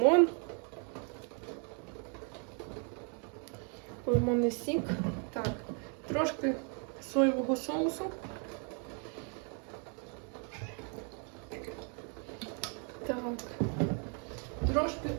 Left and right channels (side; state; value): left; quieter; 39.7 dB